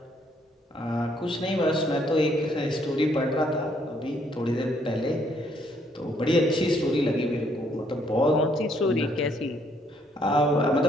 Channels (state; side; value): normal; both; correlation 0.69